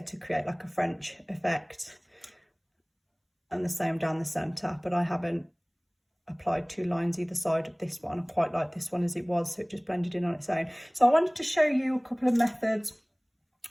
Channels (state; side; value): identical; both; correlation 1.00